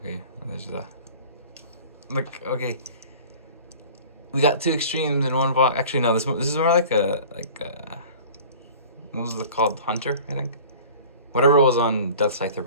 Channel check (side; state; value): both; inverted; correlation -0.43